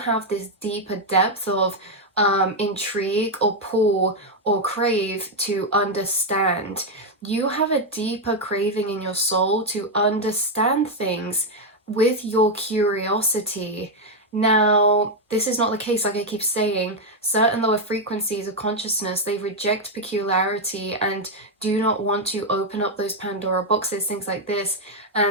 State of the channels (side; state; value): both; normal; correlation 0.02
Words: this deeper depth of intrigue or pull or crave to understand. You have a deeper craving in your soul to understand things with your curiosity. Now, this is not the case, like I keep saying. Certain lower frequencies of consciousness, they reject peculiarity and do not want to open up those Pandora boxes, things like this.